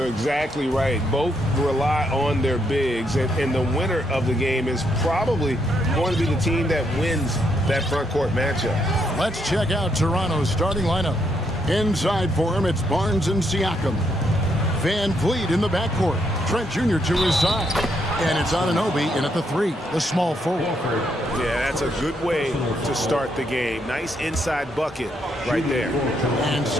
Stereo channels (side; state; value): both; normal; correlation 0.76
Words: exactly right. Both rely on their bigs, and the winner of the game is probably going to be the team that wins that front court matchup. Let's check out Toronto's starting lineup. Inside for him, it's Barnes and Siakam. Van Vliet in the backcourt. Trent Jr. to his side. And it's Anunoby in at the 3, the small forward. Yeah, that's a good way to start the game. Nice inside bucket right there. And